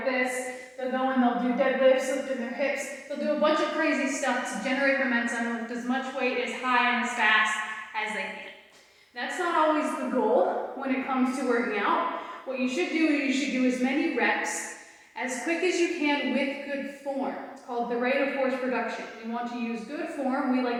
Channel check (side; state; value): both; identical; correlation 1.00